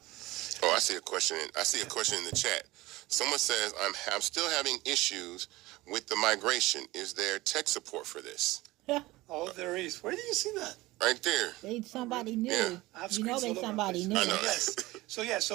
Oh, I see a question in the chat. Someone says, I'm still having issues with the migration. Is there tech support for this? Oh, there is. Where do you see that? Right there. They somebody new. Yeah. I have You know screens they all over somebody the new. place. I know. Yes.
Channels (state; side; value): quieter; left; 19.4 dB